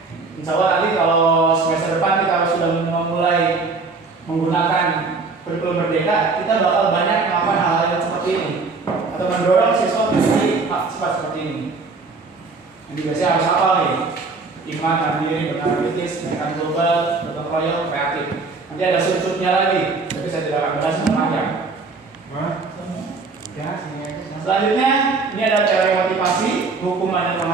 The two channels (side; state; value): left; quieter; 4.1 dB